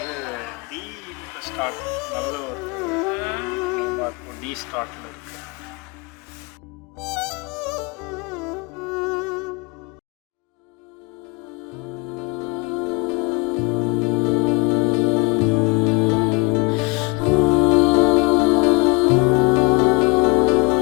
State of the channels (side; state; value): right; quieter; 26.7 dB